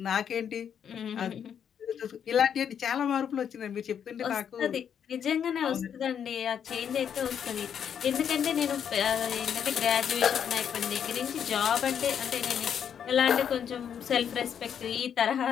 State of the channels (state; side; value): quieter; right; 8.3 dB